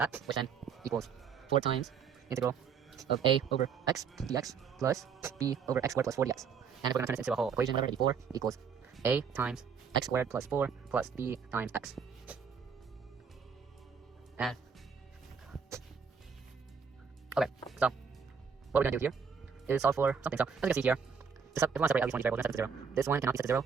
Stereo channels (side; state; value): left; quieter; 6.2 dB